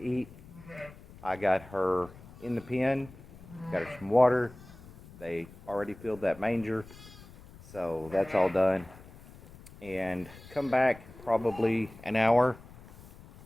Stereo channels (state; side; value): noise; left; rumble, 20 dB below the sound